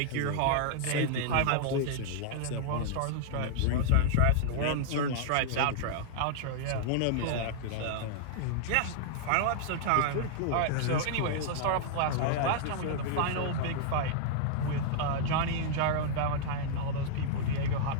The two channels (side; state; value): both; different; correlation -0.01